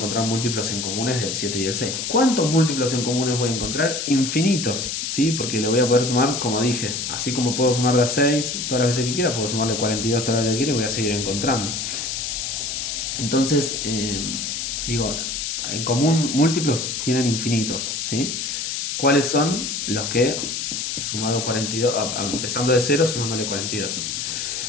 múltiplos en comunes del 7 y el 6. ¿Cuántos múltiplos en comunes voy a encontrar? Infinitos, ¿sí? Porque le voy a poder sumar, como dije, así como puedo sumar de a 6 todas las veces que quiera, puedo sumarle 42 todas las veces que quiera y voy a seguir encontrando. Entonces, digo, en común múltiplos tienen infinitos, ¿sí? ¿Cuáles son los que, sumado 42, empezando de 0, sumándole 42?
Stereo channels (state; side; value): noise; left; hiss, 3 dB below the sound